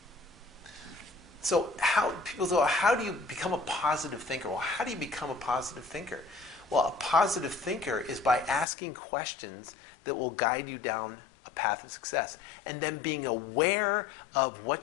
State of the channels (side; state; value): right; drops out; at 8.7 s